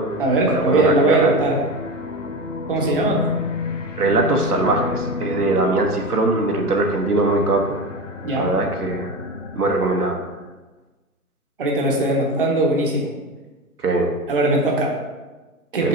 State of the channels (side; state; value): both; normal; correlation 0.25